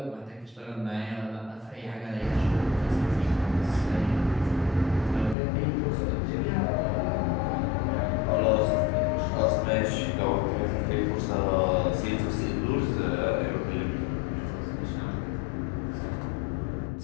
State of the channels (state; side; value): drops out; right; at 5.4 s